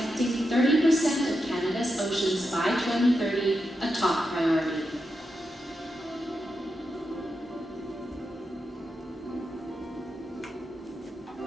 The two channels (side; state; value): both; normal; correlation 0.87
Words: 30% of Canada's oceans by 2030 a top priority.